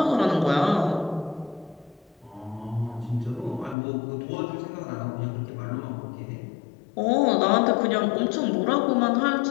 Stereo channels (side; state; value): right; drops out; at 3.8 s